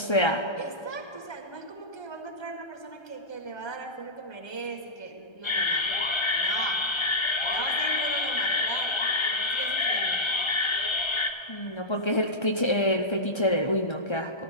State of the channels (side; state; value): right; late; 1.3 ms